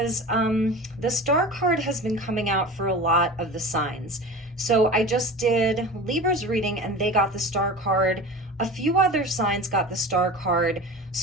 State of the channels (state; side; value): normal; both; correlation 0.34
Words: the star card has been coming out for a lot of the signs. So I just did Libra's reading and they got the star card. A few other signs got the star card.